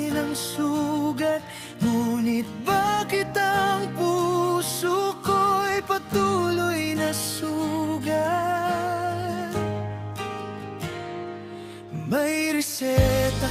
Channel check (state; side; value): identical; both; correlation 1.00